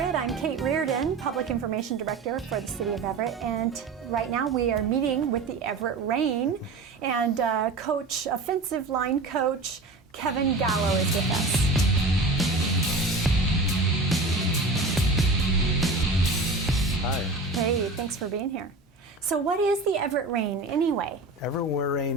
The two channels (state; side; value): quieter; left; 3.4 dB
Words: I'm Kate Reardon, Public Information Director for the City of Everett, and right now we are meeting with the Everett Rain, and offensive line coach Kevin Gallo is with us. Hi. Hey, thanks for being here. So what is the Everett Rain anyway? Everett